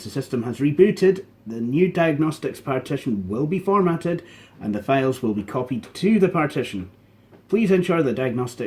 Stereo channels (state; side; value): identical; both; correlation 1.00